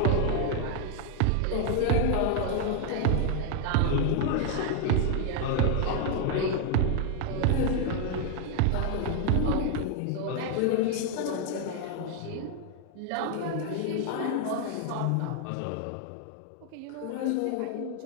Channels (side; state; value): both; different; correlation 0.00